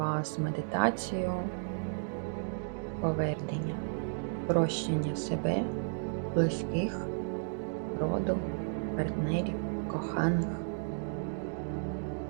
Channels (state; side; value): silent; left; digital silence